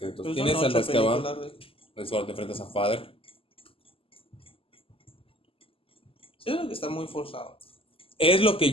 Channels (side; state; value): right; late; 0.26 ms